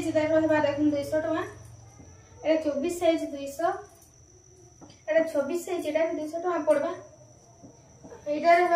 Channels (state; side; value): identical; both; correlation 1.00